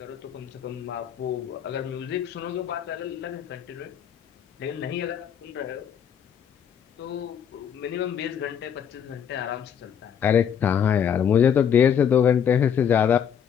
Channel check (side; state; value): right; quieter; 8.3 dB